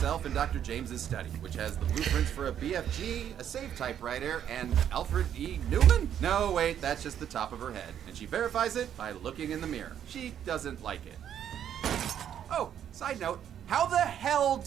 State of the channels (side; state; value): left; quieter; 9.7 dB